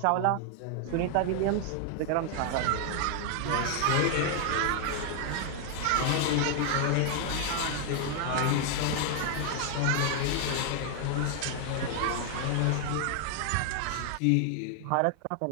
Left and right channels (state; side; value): different; both; correlation 0.00